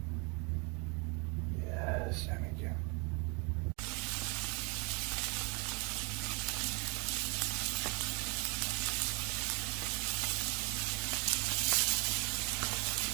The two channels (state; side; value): quieter; left; 29.1 dB